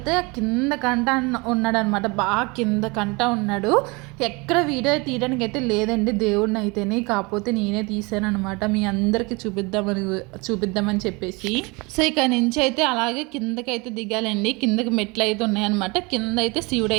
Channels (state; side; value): quieter; left; 27.0 dB